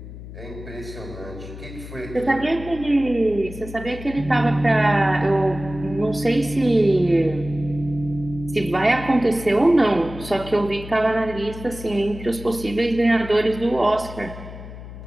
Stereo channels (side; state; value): left; noise; hum, 13 dB below the sound